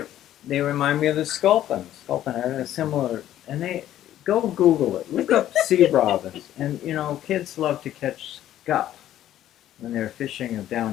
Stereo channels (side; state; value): right; quieter; 12.4 dB